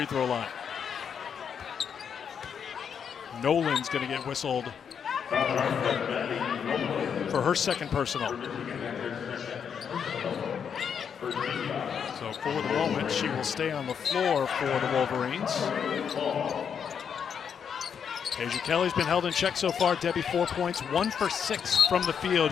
throw line. Nolan's going to get whistled for her 2nd personal. So for the moment, she will stay on the floor for the Wolverines. Deja Kelly's been held in check so far. Debbie, 4 points, 1 for 6 from the field.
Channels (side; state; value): right; quieter; 7.4 dB